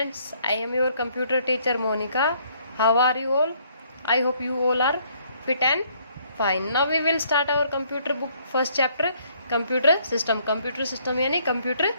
I am your computer teacher Monica. How are you all? I hope you all are fit and fine. Now we will start our computer book first chapter, computer system. Computer system यानी computer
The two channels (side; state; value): both; inverted; correlation -0.65